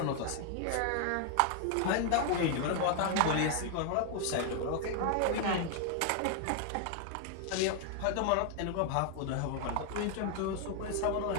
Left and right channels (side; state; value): both; different; correlation 0.00